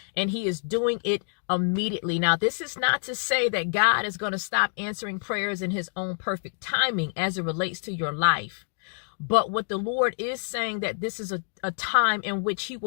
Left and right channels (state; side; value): silent; right; digital silence